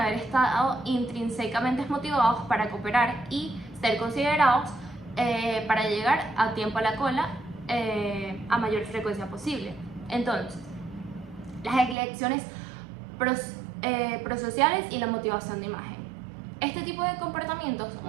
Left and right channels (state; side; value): drops out; left; at 12.0 s